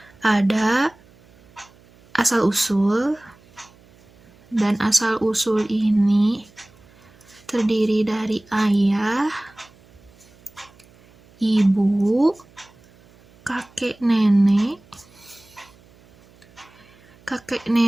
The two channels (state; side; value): noise; right; hum, 28 dB below the sound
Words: ada asal-usul, dan asal-usul ini terdiri dari ayah, ibu, kakek nenek